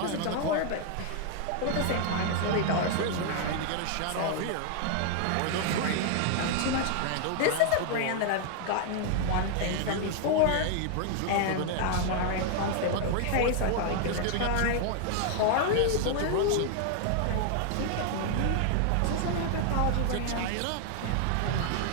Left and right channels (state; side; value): different; both; correlation 0.00